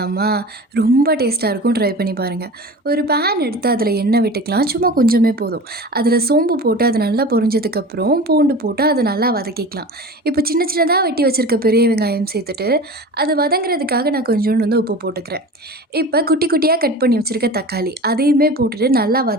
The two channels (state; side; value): normal; both; correlation 0.35